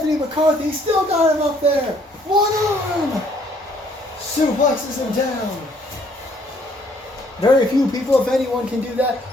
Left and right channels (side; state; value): both; normal; correlation 0.64